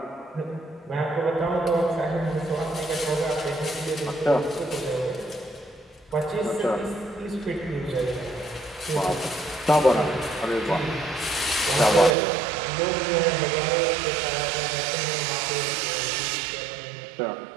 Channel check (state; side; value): drops out; left; at 12.2 s